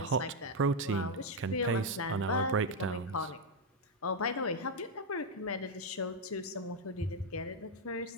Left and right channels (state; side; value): normal; both; correlation 0.02